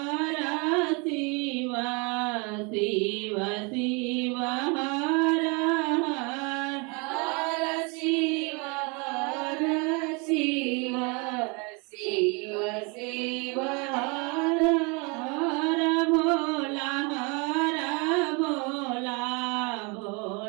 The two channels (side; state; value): left; quieter; 31.2 dB